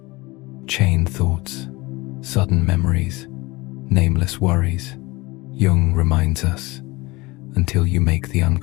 Chain thoughts, sudden memories, nameless worries. Jung reminds us, until you make the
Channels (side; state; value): right; quieter; 22.7 dB